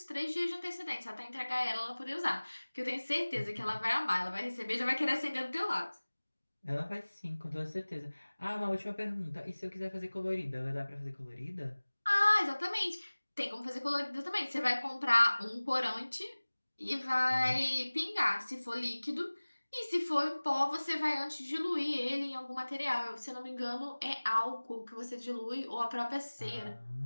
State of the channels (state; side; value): inverted; both; correlation -1.00